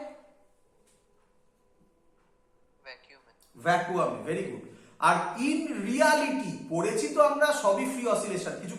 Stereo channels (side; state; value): both; identical; correlation 1.00